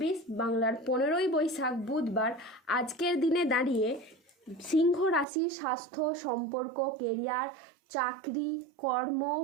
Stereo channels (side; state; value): left; drops out; at 5.2 s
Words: বাংলার 15ই বৈশাখ বুধবার আজকের দিনে দাঁড়িয়ে সিংহ রাশির স্বাস্থ্য, সম্পর্ক, কেরিয়ার, চাকরি, কর্ম,